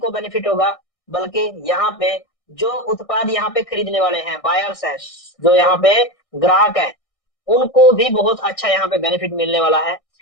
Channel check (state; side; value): late; right; 1.6 ms